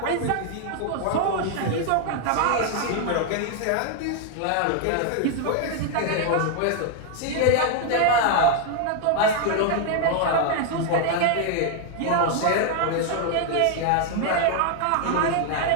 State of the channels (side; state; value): both; different; correlation 0.00